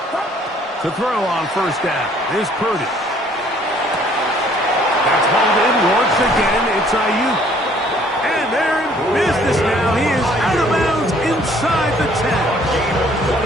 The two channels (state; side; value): normal; both; correlation 0.60